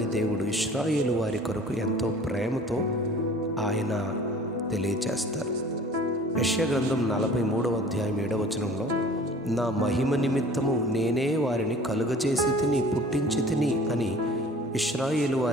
దేవుడు ఇశ్రాయేలు వారి కొరకు ఎంతో ప్రేమతో ఆయన తెలియచేస్తారు. యెషయా గ్రంథం 43వ అధ్యాయం 7వ వచనంలో, నా మహిమ నిమిత్తము నేనే వారిని కలుగజేసి తిని, పుట్టించి తిని అని ఇశ్రాయేలు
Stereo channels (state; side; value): normal; both; correlation 0.47